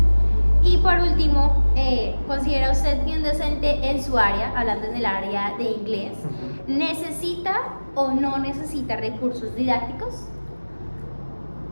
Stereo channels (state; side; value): inverted; both; correlation -1.00